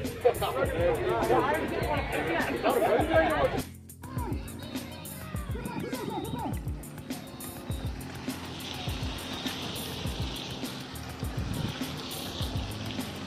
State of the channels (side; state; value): both; identical; correlation 1.00